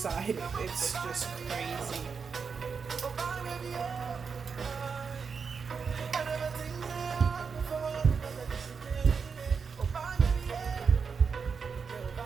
it. It's just crazy.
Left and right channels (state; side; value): quieter; left; 5.7 dB